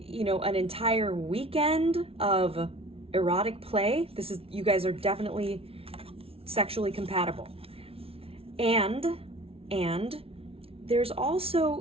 know, an entire weekend of erotic play. You guys are definitely sexually compatible. And there's also,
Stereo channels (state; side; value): late; left; 0.27 ms